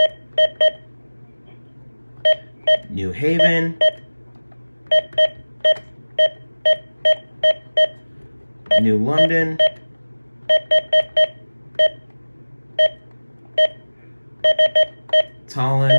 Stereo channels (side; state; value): both; inverted; correlation -1.00